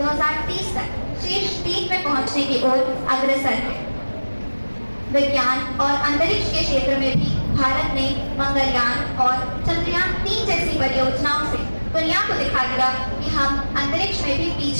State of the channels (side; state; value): both; inverted; correlation -1.00